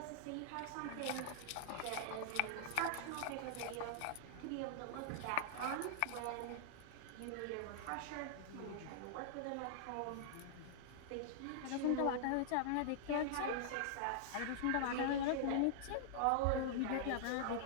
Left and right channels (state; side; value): different; both; correlation -0.01